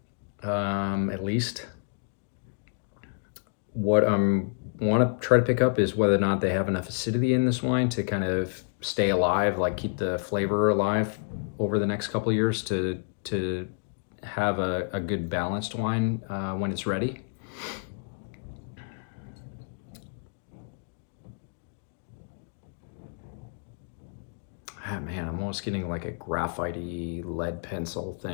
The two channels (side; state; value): right; silent; digital silence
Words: at least. What I want to try to pick up is whether or not they have enough acidity in this wine to kind of stay alive, like keep the flavor alive over the next couple of years to have a good balanced wine when it's ready. Ah, man, I'm almost getting like a graphite-y lead pencil